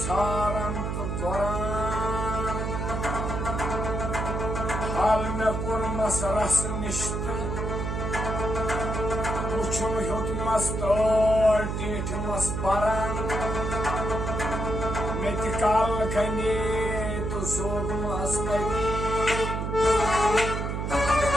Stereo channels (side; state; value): right; noise; hum, 2 dB below the sound